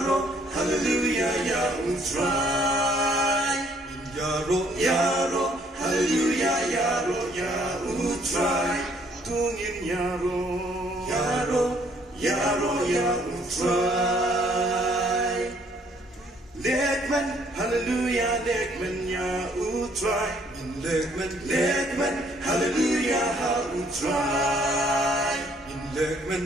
hallelujah, ya utrai. Yaro, yaro, hallelujah, yaro, ya utrai. Tungin yaro, yaro, yaro, ya utrai. Lekman, hallelujah, lekman, ya utrai. Lekman, hallelujah, ha utrai. Lekman,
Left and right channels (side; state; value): both; normal; correlation 0.64